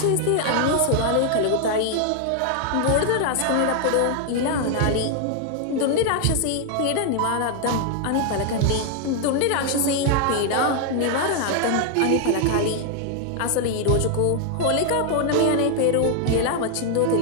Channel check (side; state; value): both; different; correlation 0.00